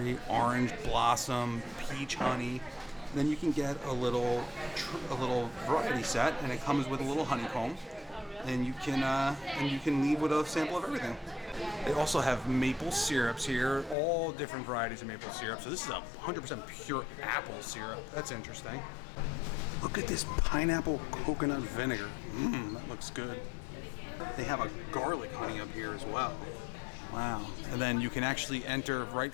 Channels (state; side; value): drops out; right; at 14.0 s